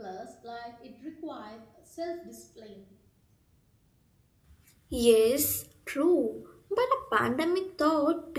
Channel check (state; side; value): identical; both; correlation 1.00